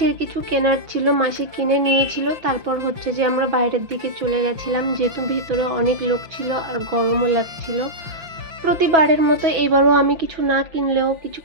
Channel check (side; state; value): left; late; 5.9 ms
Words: কিছু কেনার ছিল, মাসি কিনে নিয়েছিল। তারপর হচ্ছে যে আমরা বাইরের দিকে চলে গেছিলাম, যেহেতু ভিতরে অনেক লোক ছিল আর গরমও লাগছিল। প্রতিবারের মতো এবারও আমি কিছু না কিনলেও, কিছু